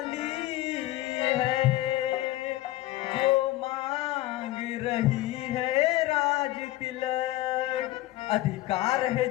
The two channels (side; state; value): right; quieter; 16.4 dB